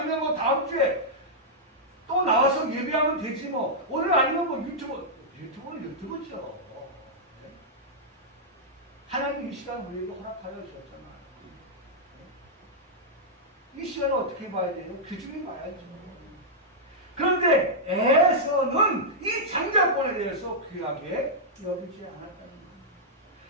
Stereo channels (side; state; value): both; normal; correlation -0.08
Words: 뭐 다음 주에 또 나와서 예배하면 되지 뭐. 오늘 아니면 뭐 유튜브는 유튜브죠. 하나님 이 시간 우리에게 허락하여 주셨잖아요. 이 시간을 어떻게 봐야 돼요? 귀중히 봐야죠. 그런데 에서는 이 장자권에 대해서 귀하게 여기지 않았다는 겁니다.